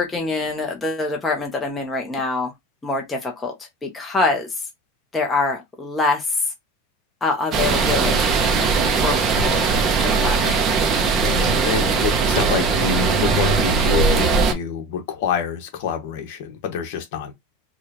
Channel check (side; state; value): both; normal; correlation 0.36